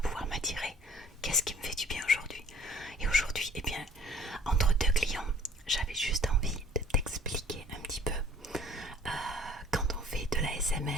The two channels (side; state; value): both; normal; correlation 0.53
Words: m'attirer. Qu'est-ce qui me fait du bien aujourd'hui. Et aujourd'hui, eh bien, entre deux clients, j'avais juste envie de t'expliquer un petit peu quand on fait de la